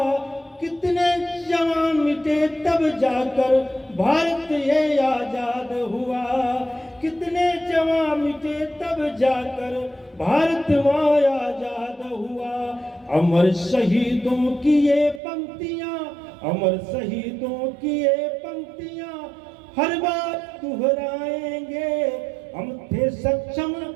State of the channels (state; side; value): drops out; left; at 15.2 s